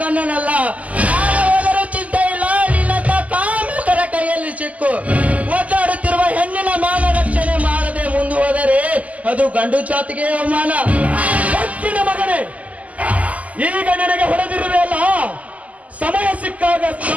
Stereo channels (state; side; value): late; left; 0.072 ms